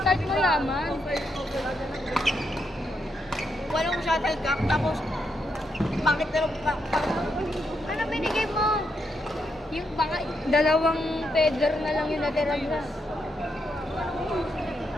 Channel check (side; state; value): both; normal; correlation 0.80